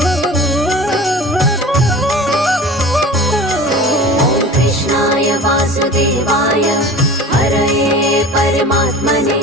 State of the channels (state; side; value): normal; both; correlation 0.39